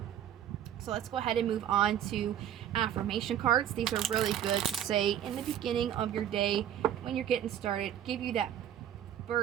So let's go ahead and move on to affirmation cards. These are really good to say in the beginning of your day when you're getting started, give you that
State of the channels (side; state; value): left; quieter; 10.5 dB